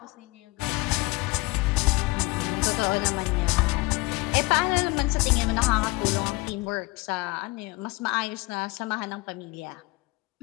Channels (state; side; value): quieter; right; 23.1 dB